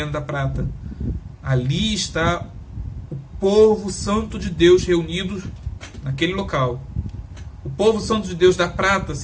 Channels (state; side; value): identical; both; correlation 1.00